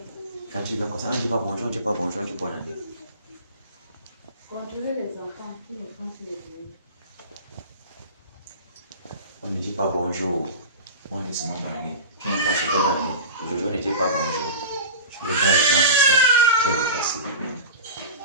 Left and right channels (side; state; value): both; inverted; correlation -0.31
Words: Quand tu viens comme ça, on ne dit pas bonjour, on ne dit pas bonjour, on dit bonne année. Contrôler les enfants, tous les enfants sur les bureaux. On ne dit pas bonjour. On dit seulement bonne année. Tu n'as pas souhaité bonne année. Aujourd'hui, on ne dit pas bonjour. Je regarde les gens comme ça. Je le passe.